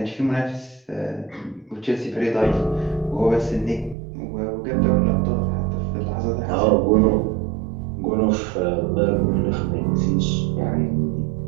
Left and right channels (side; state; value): left; drops out; at 4.0 s